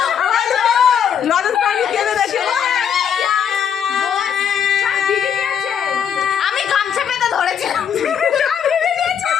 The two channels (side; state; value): right; quieter; 8.2 dB